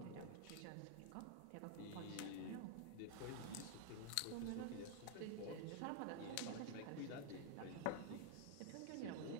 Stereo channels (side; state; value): both; different; correlation 0.00